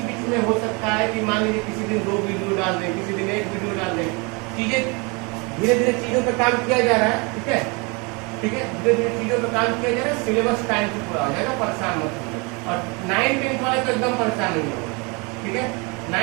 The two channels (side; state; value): left; quieter; 29.9 dB